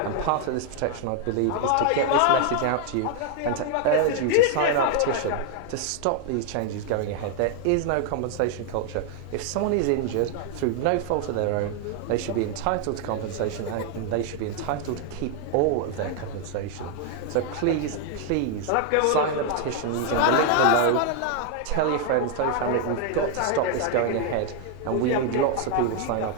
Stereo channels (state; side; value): different; both; correlation 0.00